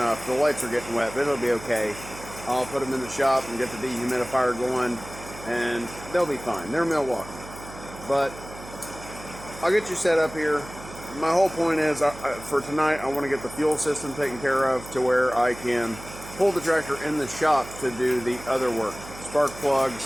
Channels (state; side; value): noise; right; hum, 15 dB below the sound